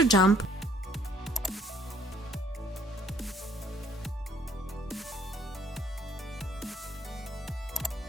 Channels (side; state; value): both; normal; correlation 0.62